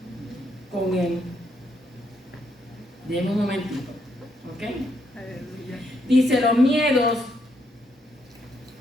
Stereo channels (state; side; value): normal; both; correlation 0.76